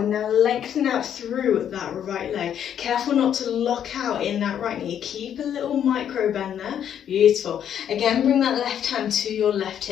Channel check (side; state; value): right; quieter; 9.4 dB